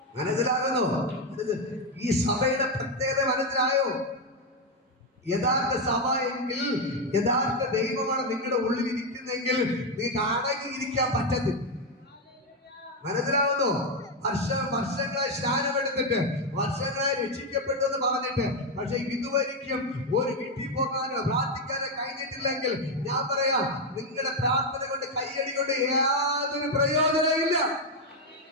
മനസ്സിലാകുന്നോ? ഈ സഭയുടെ പ്രത്യേകത മനസ്സിലായോ? യഥാർത്ഥ സഭ എങ്കിൽ, യഥാർത്ഥ ദൈവമാണ് നിങ്ങളുടെ ഉള്ളിൽ ഇരിക്കുന്നെങ്കിൽ നിങ്ങൾക്ക് അടങ്ങിയിരിക്കാൻ പറ്റത്തില്ല. മനസ്സിലാവുന്നോ? വർഷങ്ങളായി സ്നാനമെടുത്തിട്ട്, വർഷങ്ങളായി രക്ഷിക്കപ്പെട്ടു എന്ന് പറഞ്ഞിട്ട്, പക്ഷെ ഇതുവരെയും ഒരു വീട്ടിൽ പോകാനോ പ്രാർത്ഥിക്കാനോ കഴിഞ്ഞിട്ടില്ലെങ്കിൽ ഞാൻ പറയാം, നിങ്ങളുടെ പ്രാർത്ഥന കൊണ്ട് കയ്യടി കൊണ്ട് യാതൊരു പ്രയോജനമില്ല.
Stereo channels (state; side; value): normal; both; correlation 0.06